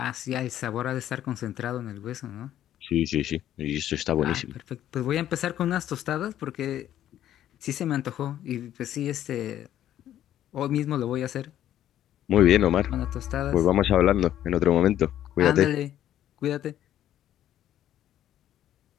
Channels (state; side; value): quieter; right; 11.8 dB